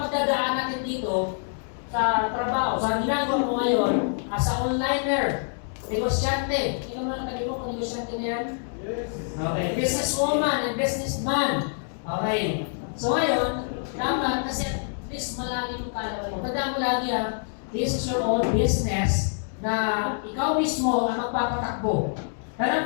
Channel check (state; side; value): silent; right; digital silence